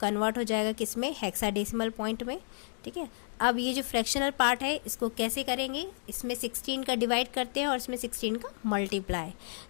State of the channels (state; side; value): silent; right; digital silence